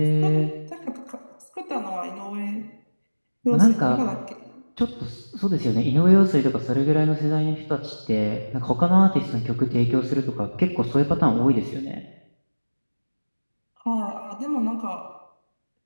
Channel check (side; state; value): both; inverted; correlation -1.00